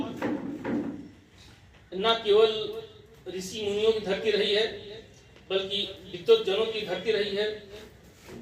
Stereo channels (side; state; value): both; identical; correlation 1.00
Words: न केवल ऋषि मुनियों की धरती रही है, बल्कि विद्वत जनों की धरती रही है,